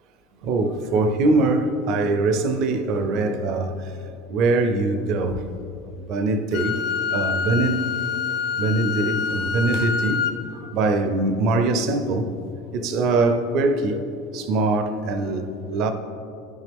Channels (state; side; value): normal; both; correlation 0.40